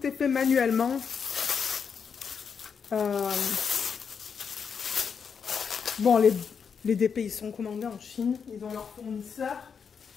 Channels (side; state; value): right; quieter; 6.4 dB